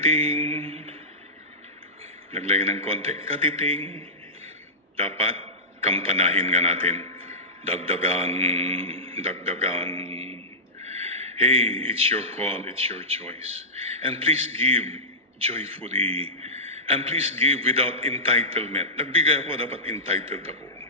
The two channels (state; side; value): normal; both; correlation -0.16